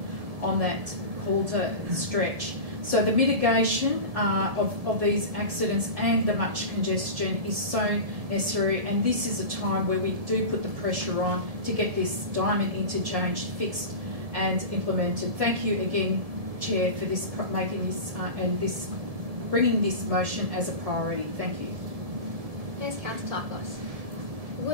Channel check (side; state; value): left; late; 1.7 ms